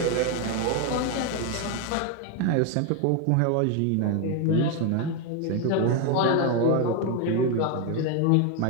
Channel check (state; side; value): different; both; correlation 0.01